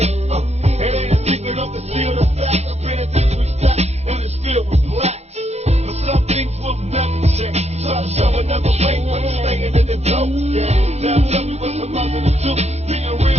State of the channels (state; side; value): late; left; 0.31 ms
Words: ain't a secret of the seal, the fact. I've been at this stack, and it's filled with blacks. But some things will never change. Try to show another way, but it's staying in the dope. Yeah. Now tell me what's the mother to do. Being